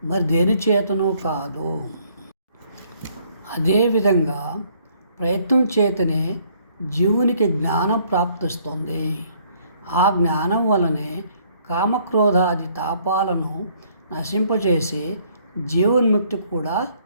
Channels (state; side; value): inverted; both; correlation -0.64